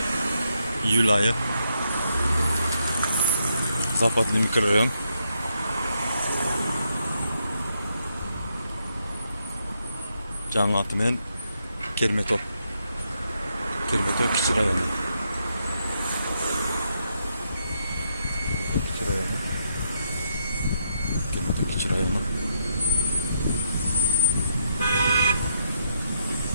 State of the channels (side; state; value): both; inverted; correlation -0.78